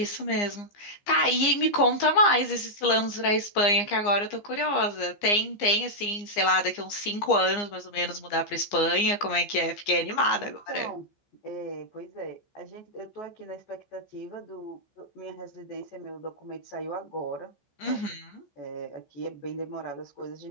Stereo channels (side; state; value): right; late; 15 ms